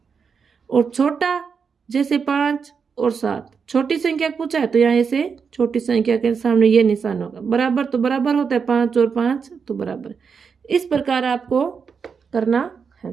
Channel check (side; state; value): left; quieter; 6.0 dB